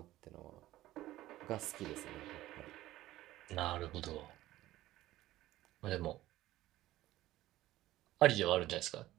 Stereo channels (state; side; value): quieter; left; 15.6 dB